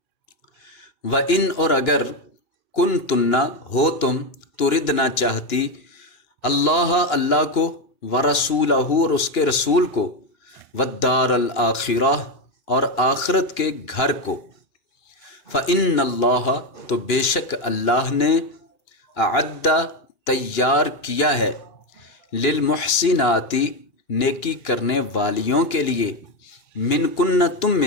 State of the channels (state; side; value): late; right; 2.9 ms